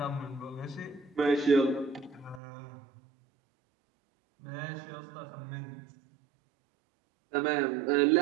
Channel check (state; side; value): drops out; left; at 2.4 s